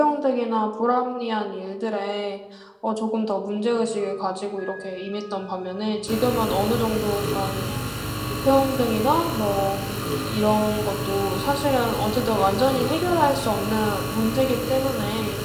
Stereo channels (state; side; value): identical; both; correlation 1.00